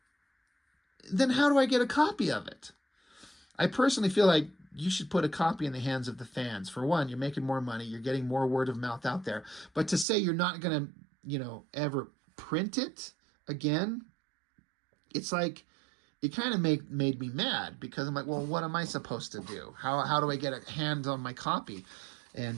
then how do I get a copy of it? I personally feel like you should put a copy in the hands of the fans. For one, you're making more money. You're getting more word of mouth out there. But to say you're not going to, you know, ever print it again, it's like, it kind of made me mad because I'm like, well, what am I supposed to do? How do I get a hand on my copy?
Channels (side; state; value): left; drops out; at 10.1 s